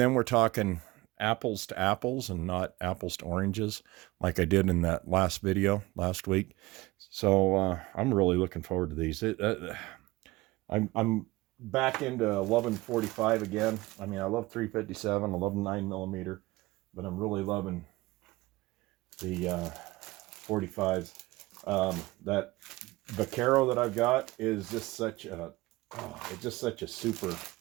we're talking apples to apples and not apples to oranges like I did in that last video last week. So I'm really looking forward to these. I'm back into loving 45 again. I mean, I love 357, I love 9mm, but I'm really loving the 45s. That Vaquero that I've got is just such a, it's just such a super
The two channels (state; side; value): quieter; left; 20.6 dB